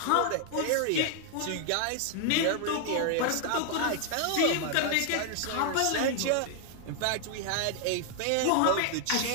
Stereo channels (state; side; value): different; both; correlation 0.00